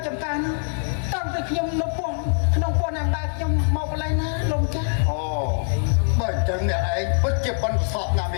ចំការនេះតាំងពីខ្ញុំនៅពោះក្នុងពោះណាំដែរខ្ញុំមកកន្លែងណាលោកម្ចាស់ អូបើអញ្ចឹងអ្នកឯងពិតជាប៉ុនប្រសពណាស់ម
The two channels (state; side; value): silent; right; 61 dB below the other